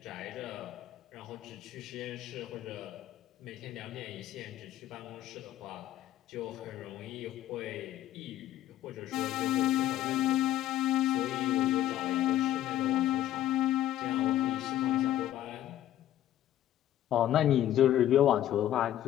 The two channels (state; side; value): quieter; right; 12.5 dB